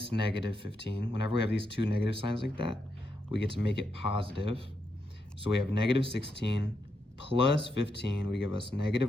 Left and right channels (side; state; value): both; normal; correlation 0.82